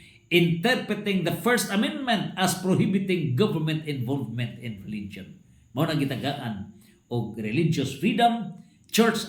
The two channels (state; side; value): identical; both; correlation 1.00